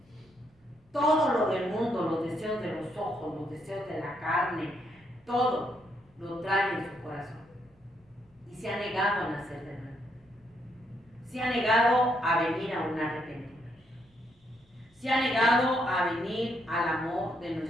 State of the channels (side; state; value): both; normal; correlation 0.76